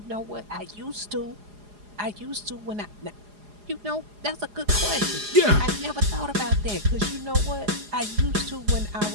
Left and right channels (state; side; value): late; left; 4.8 ms